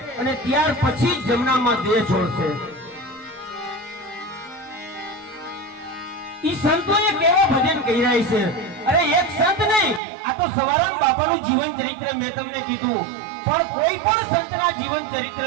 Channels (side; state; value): left; drops out; at 10.0 s